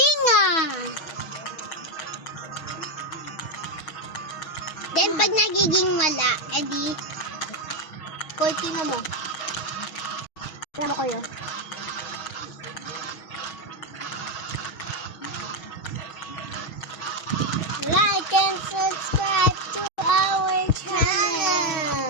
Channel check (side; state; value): right; late; 6.4 ms